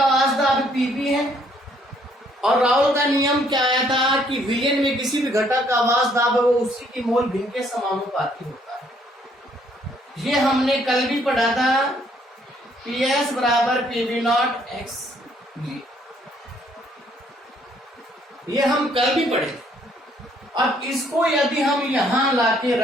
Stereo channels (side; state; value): both; normal; correlation 0.66